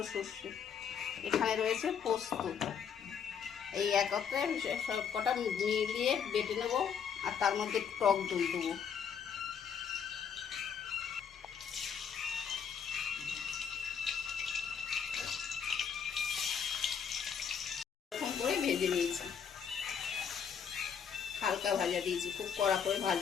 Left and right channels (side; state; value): right; quieter; 7.3 dB